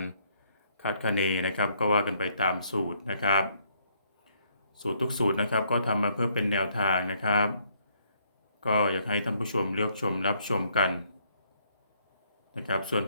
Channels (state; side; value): inverted; both; correlation -0.69